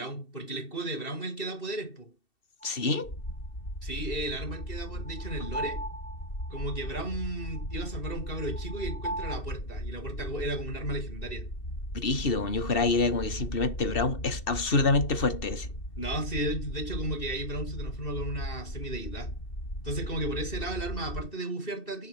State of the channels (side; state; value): right; late; 2.7 ms